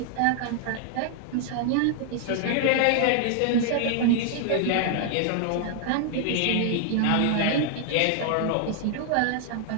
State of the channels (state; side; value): different; both; correlation 0.00